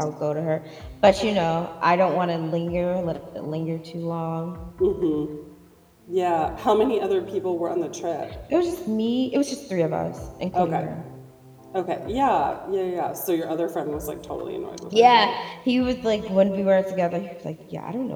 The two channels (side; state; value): both; identical; correlation 1.00